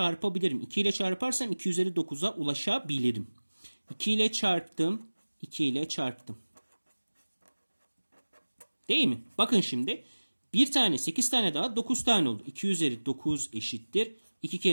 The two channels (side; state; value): both; inverted; correlation -1.00